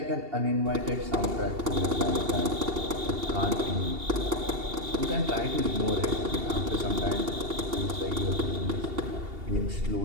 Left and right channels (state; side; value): late; left; 2.8 ms